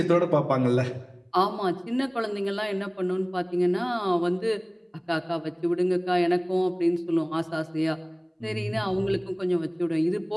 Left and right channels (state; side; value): identical; both; correlation 1.00